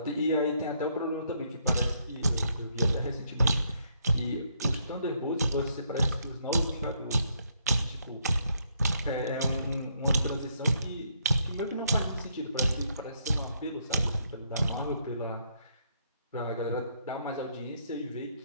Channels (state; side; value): inverted; both; correlation -0.72